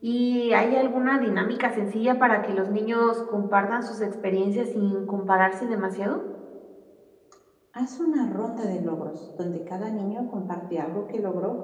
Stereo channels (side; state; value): both; identical; correlation 1.00